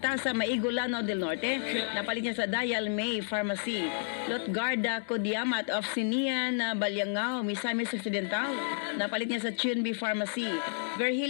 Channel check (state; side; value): silent; right; digital silence